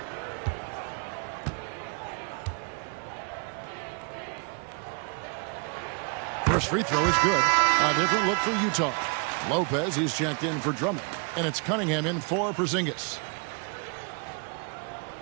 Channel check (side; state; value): left; quieter; 35.8 dB